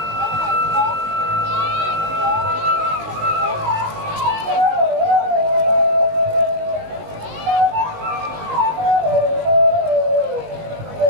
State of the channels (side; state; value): left; late; 19 ms